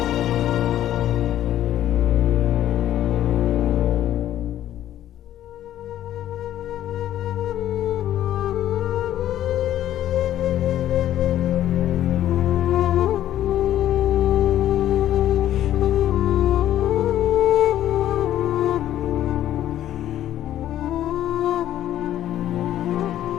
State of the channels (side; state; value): right; quieter; 12.2 dB